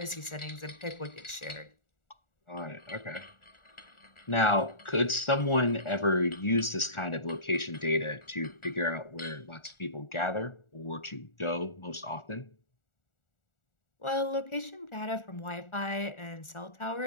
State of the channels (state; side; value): late; right; 1.4 ms